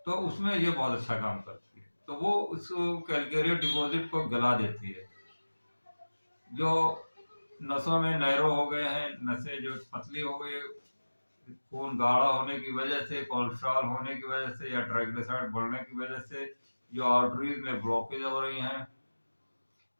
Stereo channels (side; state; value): both; inverted; correlation -1.00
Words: तो उसमें ये बहुत अच्छा काम करती है। तो वो उस कैलकेरियर डिपॉजिट को गला देती है। जो नसों में नैरो हो गए हैं, नसें जो पतली हो गई, खून गाढ़ा होने की वजह से, कोलेस्ट्रॉल होने की वजह से, या ट्राइग्लिसराइड बढ़ने की वजह से जो आर्टरीज में ब्लॉकेज हो रही हैं,